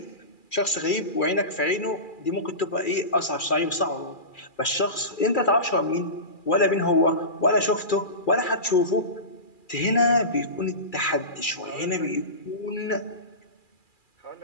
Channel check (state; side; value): late; right; 2.4 ms